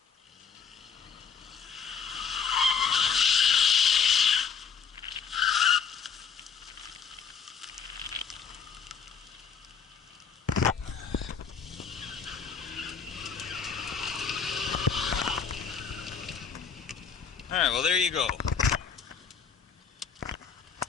Alright, well there you go.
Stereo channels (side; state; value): right; quieter; 6.3 dB